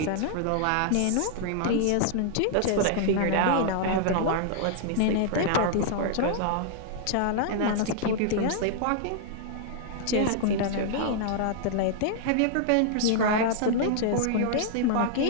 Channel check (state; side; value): different; both; correlation -0.01